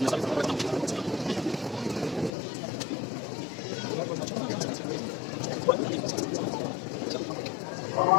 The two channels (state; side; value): drops out; right; at 2.3 s